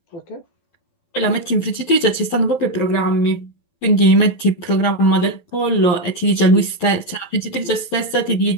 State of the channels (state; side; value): late; right; 12 ms